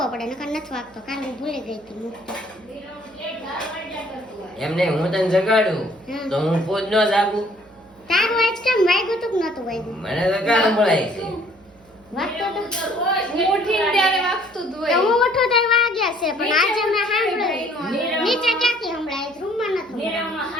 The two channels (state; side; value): noise; right; hum, 29 dB below the sound